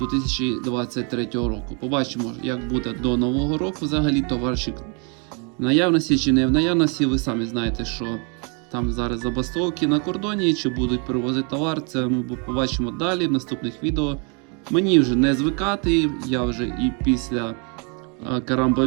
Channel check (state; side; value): quieter; left; 35.5 dB